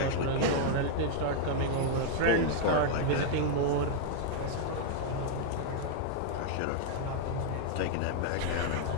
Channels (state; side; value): different; both; correlation -0.01